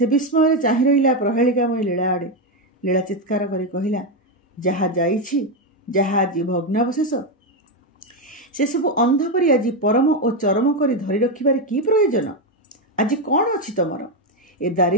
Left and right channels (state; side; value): normal; both; correlation 0.07